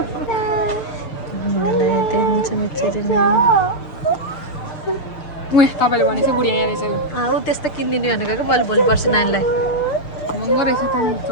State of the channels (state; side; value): late; right; 6.6 ms